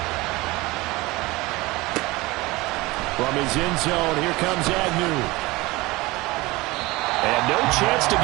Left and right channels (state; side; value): quieter; left; 21.5 dB